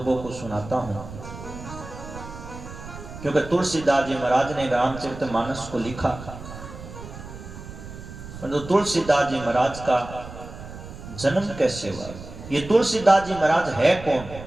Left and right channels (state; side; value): noise; right; rumble, 13 dB below the sound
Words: को सुनाता हूं, क्योंकि तुलसीदास जी महाराज ने रामचरितमानस को लिखा। तो तुलसीदास जी महाराज का जन्म कैसे हुआ? ये तुलसीदास जी महाराज है कौन?